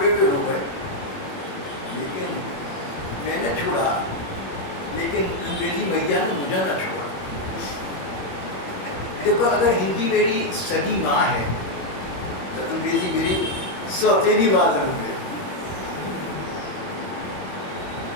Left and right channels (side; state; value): right; late; 21 ms